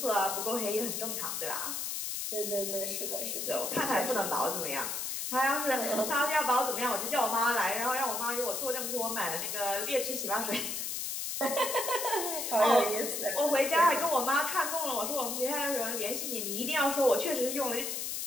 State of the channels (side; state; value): left; noise; hiss, 3 dB below the sound